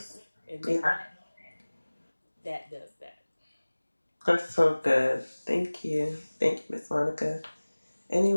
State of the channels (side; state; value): both; inverted; correlation -1.00